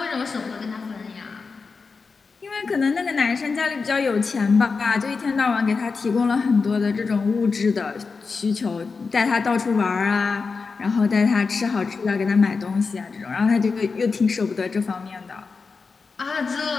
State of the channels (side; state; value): right; quieter; 4.7 dB